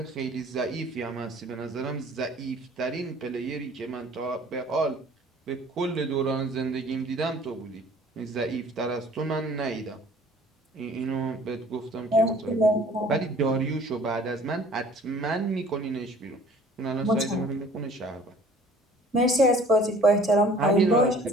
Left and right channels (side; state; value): both; normal; correlation 0.52